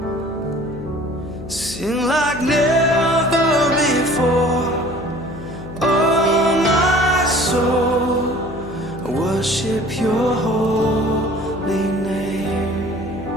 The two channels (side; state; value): left; noise; hum, 12 dB below the sound